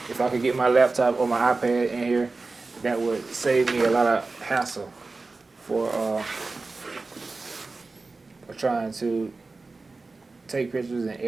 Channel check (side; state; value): left; quieter; 3.7 dB